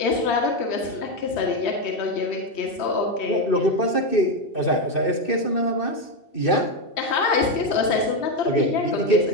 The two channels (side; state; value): right; late; 3.1 ms